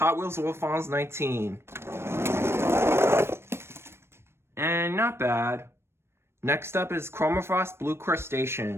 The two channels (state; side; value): late; left; 0.12 ms